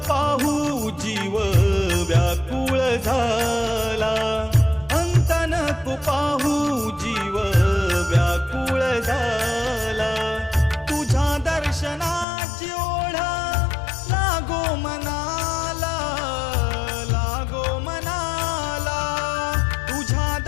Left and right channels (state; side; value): drops out; right; at 12.2 s